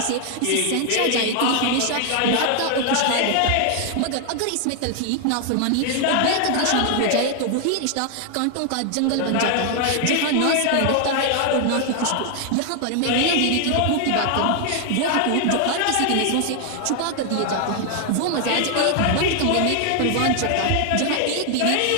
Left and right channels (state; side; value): different; both; correlation 0.00